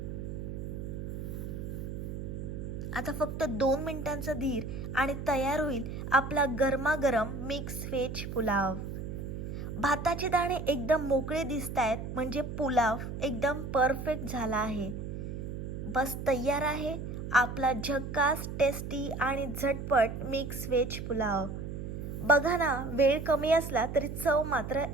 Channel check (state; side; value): noise; right; hum, 6 dB below the sound